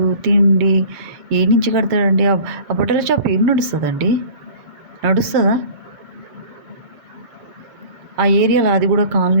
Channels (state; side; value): late; left; 7.4 ms